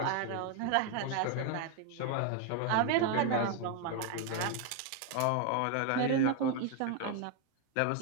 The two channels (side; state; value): both; different; correlation 0.01